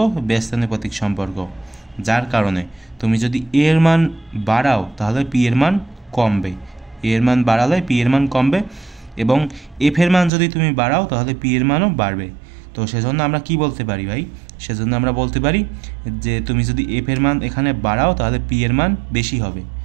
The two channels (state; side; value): drops out; left; at 10.3 s